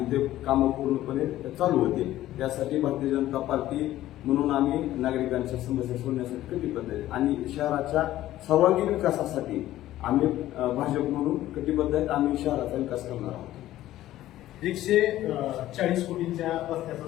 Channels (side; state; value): right; quieter; 14.3 dB